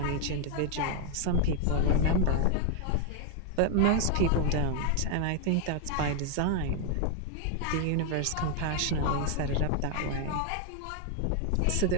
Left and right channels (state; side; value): different; both; correlation 0.00